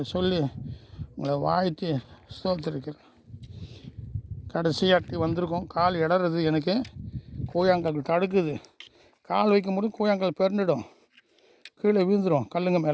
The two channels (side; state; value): both; identical; correlation 1.00